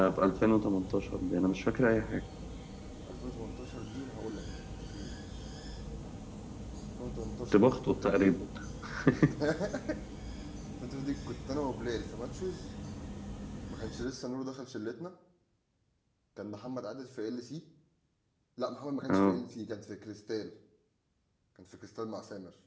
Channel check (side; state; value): both; identical; correlation 1.00